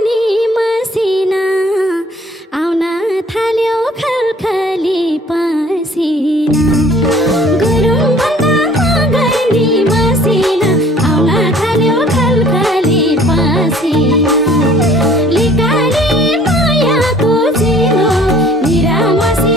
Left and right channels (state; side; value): normal; both; correlation 0.54